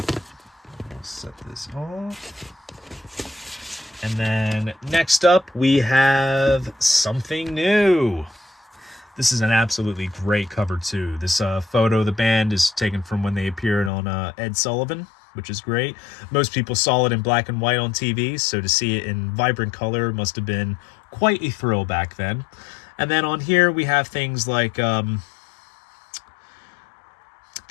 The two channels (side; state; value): right; drops out; at 13.9 s